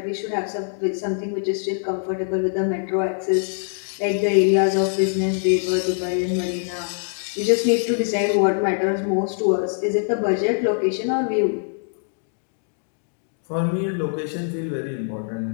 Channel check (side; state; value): right; silent; digital silence